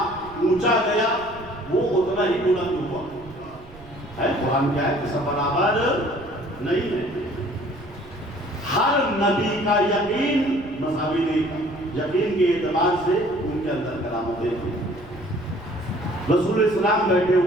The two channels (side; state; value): right; noise; rumble, 20 dB below the sound